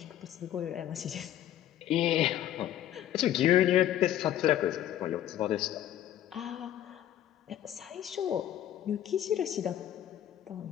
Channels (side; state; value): right; quieter; 11.9 dB